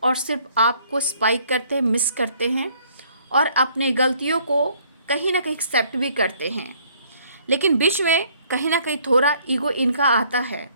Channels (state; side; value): inverted; both; correlation -0.62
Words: और सिर्फ आपको स्पाइक करते हैं, मिस करते हैं और अपने गलतियों को कहीं ना कहीं एक्सेप्ट भी करते हैं। लेकिन बीच में कहीं ना कहीं थोड़ा ईगो इनका आता है,